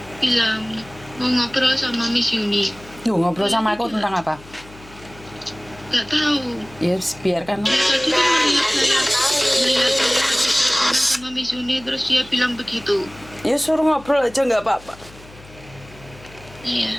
bilang mau ngobrol sama Miss Yuni. Duh, ngobrol sama aku tentang apa? Gak tahu. Ya, biarkan. Tadi kan melihat saya teleponan sama Miss Yuni, terus dia bilang begitu. Ya suruh ngobrol aja nggak apa-apa. Iya,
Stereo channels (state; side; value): noise; left; hum, 22 dB below the sound